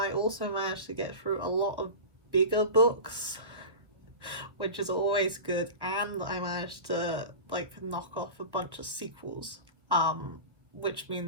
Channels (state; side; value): late; left; 1.4 ms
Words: also managed to get through a lot of bigger books, which is always good, and I managed to knock off a bunch of sequels, which